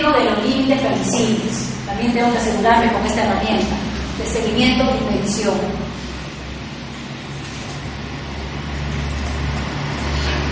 de los límites permisibles. También tengo que asegurarme con esta herramienta de seguimiento y medición.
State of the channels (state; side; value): identical; both; correlation 1.00